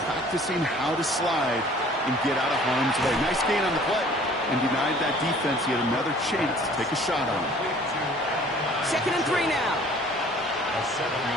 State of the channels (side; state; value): both; normal; correlation 0.52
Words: practicing how to slide and get out of harm's way. Nice gain on the play. And denied that defense. He had another chance to take a shot on him. 2nd and 3 now. A